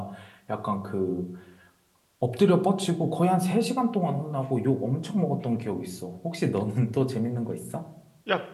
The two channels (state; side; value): identical; both; correlation 1.00